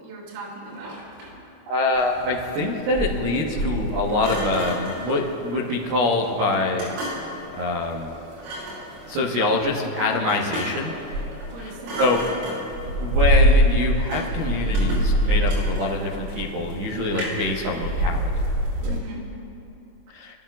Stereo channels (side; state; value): left; late; 25 ms